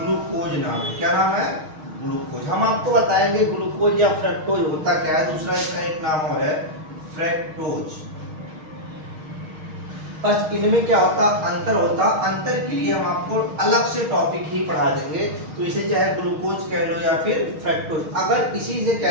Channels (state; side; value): late; left; 6.4 ms